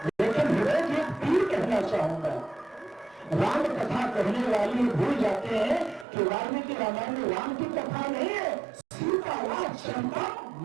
लेकिन हृदय की एक पीर कहना चाहूंगा। राम कथा कहने वाले भूल जाते हैं कि वाल्मीकि रामायण में राम की कथा नहीं है, सीता राज चंपा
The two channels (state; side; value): drops out; left; at 6.1 s